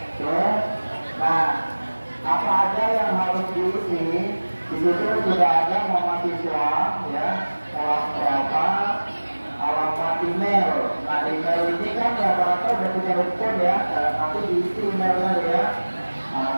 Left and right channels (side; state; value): both; inverted; correlation -1.00